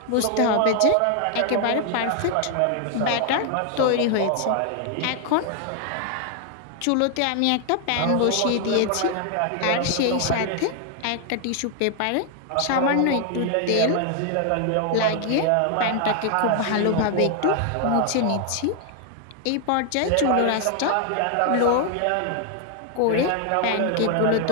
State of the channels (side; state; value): both; different; correlation 0.00